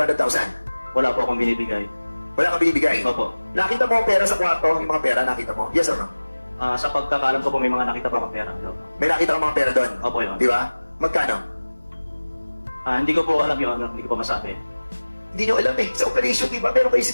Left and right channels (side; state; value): both; inverted; correlation -1.00